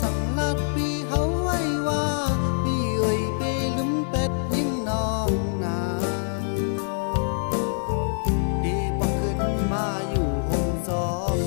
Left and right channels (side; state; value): right; silent; 62 dB below the other